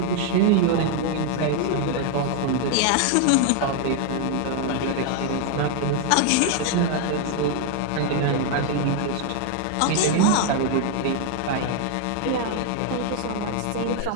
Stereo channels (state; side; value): different; both; correlation 0.00